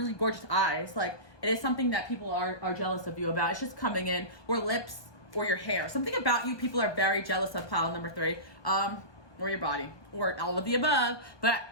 gorgeous eyes. Like, it is something that people are jealous of you about. It's just coming in, or lips, or your hair. Something about you people are very jealous of, pile number 3. Or your body, or all of the above,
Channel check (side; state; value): right; late; 1.2 ms